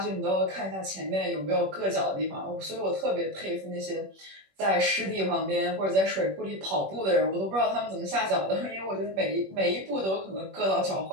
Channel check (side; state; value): left; late; 21 ms